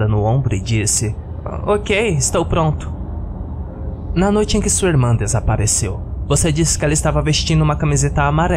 no ombro e disse: Ok, estou pronto. Na noite em que sua irmã desapareceu, você disse que ela estava vestindo uma camiseta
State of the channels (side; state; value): both; identical; correlation 1.00